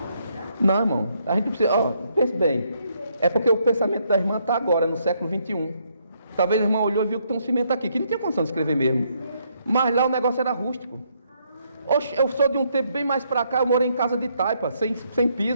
Não, irmão, a gente precisa, pense bem, é porque o pensamento da irmã está agora, no século 21. Talvez a irmã olhou e viu que tem um cimento aqui, que não tinha condição de escrever mesmo, mas lá o negócio era rústico. Oxe, eu sou de um tempo bem mais para cá, eu morei em casa de taipa, sem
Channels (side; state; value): both; inverted; correlation -0.73